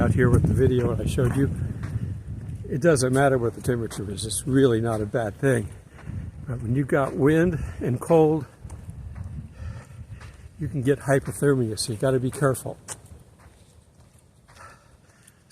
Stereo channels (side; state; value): both; identical; correlation 1.00